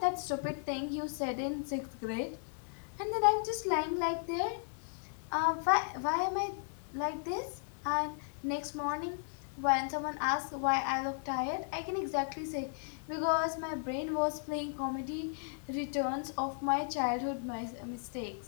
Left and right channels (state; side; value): silent; right; digital silence